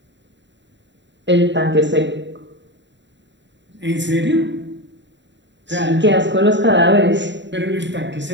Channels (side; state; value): left; late; 0.52 ms